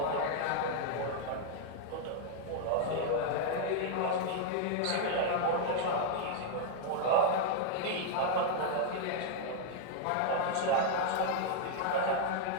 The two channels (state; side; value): different; both; correlation -0.01